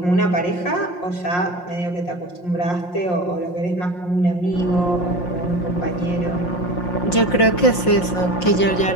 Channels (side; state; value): right; late; 5.6 ms